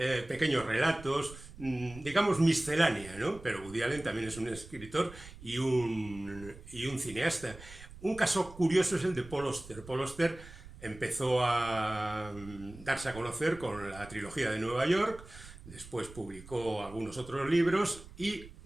pequeños relatos, digamos miscelánea, ¿no? Pero Woody Allen también es un escritor y un cineasta. Un caso curioso es el de Paul Auster. Paul Auster empezó a darse a conocer con la trilogía de Nueva York, después publicó algunos otros libros y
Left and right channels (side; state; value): right; noise; rumble, 17 dB below the sound